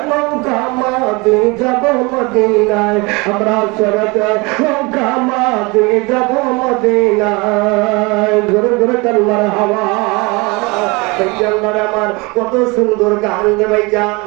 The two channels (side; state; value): left; quieter; 26.5 dB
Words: নৌকা মাঝি যাব মদিনায়, আমরা ছেড়ে দে নৌকা মাঝি যাব মদিনায়। ঘুরে ঘুরে কাল্লার হাওয়া আমার কত সুন্দর গান রে ভাইজান।